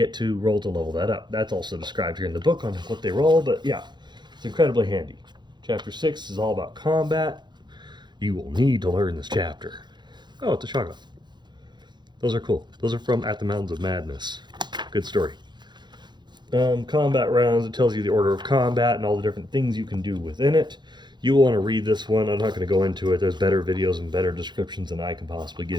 to roll to level that up. That's also described here in the book on what they roll, but yeah, it's incredibly handy. Chapter 6 is all about combat. You will need to learn this chapter. Oh, it's a shotgun. Those are cool. Those are from At the Mountains of Madness. Good story. Combat rounds, it tells you the order of combat and all the different things you can do within it. You will want to read this one. I'm not going to go into it. There's better videos and better descriptions than I can possibly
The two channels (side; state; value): left; late; 0.21 ms